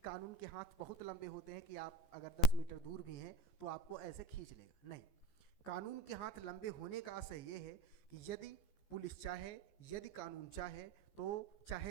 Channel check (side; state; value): right; late; 14 ms